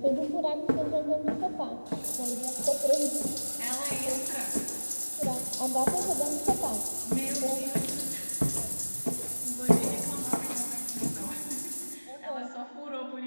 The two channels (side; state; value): both; inverted; correlation -1.00